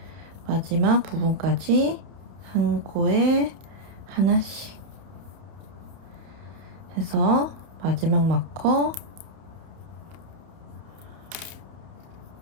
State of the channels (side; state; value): left; late; 30 ms